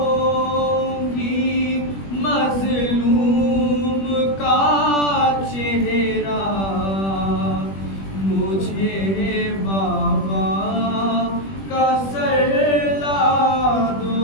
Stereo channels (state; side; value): late; right; 21 ms